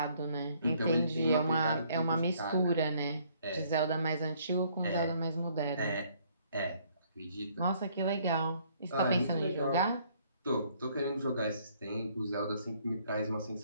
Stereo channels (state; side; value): inverted; both; correlation -0.64